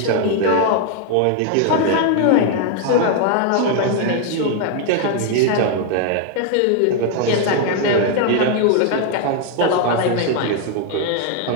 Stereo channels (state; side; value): different; both; correlation 0.00